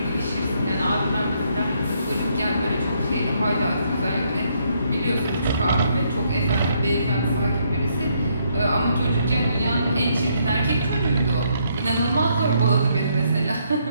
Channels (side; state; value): both; inverted; correlation -0.72